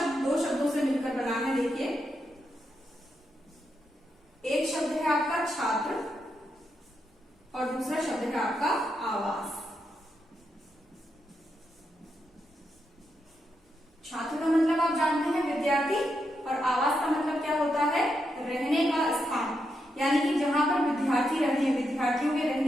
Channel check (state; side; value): normal; both; correlation 0.83